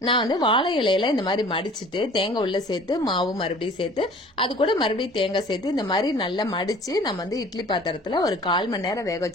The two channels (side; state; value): both; normal; correlation 0.48